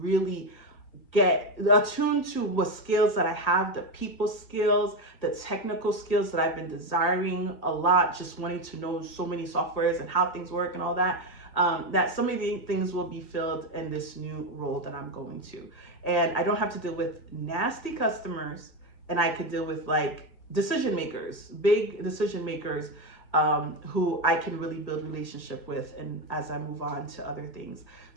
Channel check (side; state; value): right; late; 1.8 ms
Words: get attuned to what skills that I have, the people skills, the technical skills that I've been desiring a lot, just wanting to know so many softwares and how things work and all that. That some of the things will be filled in this new role that I'm going to. And I don't have to deal with nasty customers, and I could deal with like decision makers, big decision makers, who I can really build relationship with, and as I move on to other things.